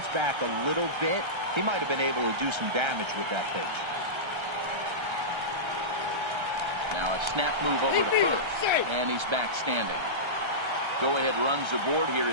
back a little bit, he might have been able to do some damage with that pitch. Now a snap move over to first, and he's back standing. Go-ahead runs aboard here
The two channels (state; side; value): late; left; 1.3 ms